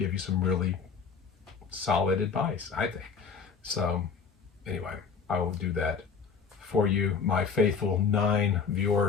you some really solid advice, I think. So anyway, I will do that for you, my faithful 9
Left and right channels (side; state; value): right; quieter; 5.8 dB